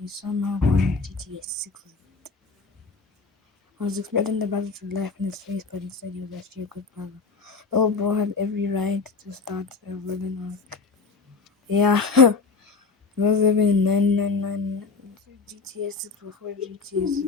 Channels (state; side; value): quieter; right; 4.4 dB